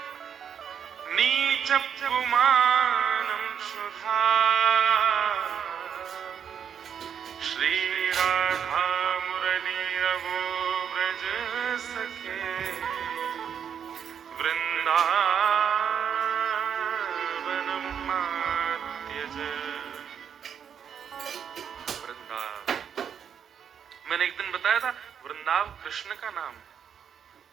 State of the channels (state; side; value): quieter; left; 8.0 dB